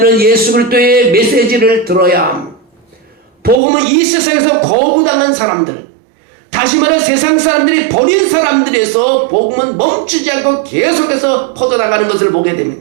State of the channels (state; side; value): drops out; left; at 3.6 s